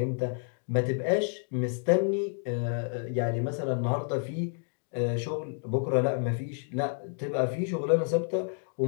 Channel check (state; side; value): silent; right; 58 dB below the other